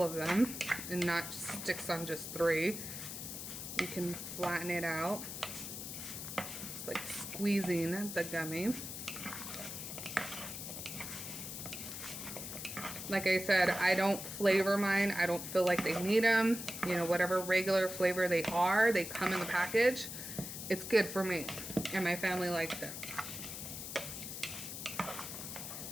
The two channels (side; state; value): left; noise; hiss, 7 dB below the sound